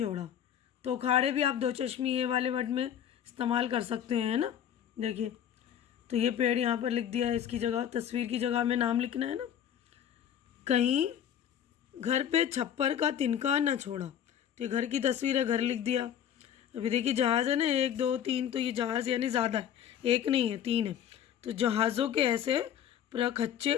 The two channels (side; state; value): right; quieter; 9.6 dB